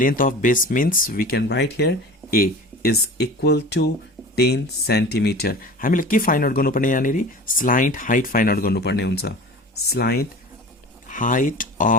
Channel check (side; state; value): both; normal; correlation 0.37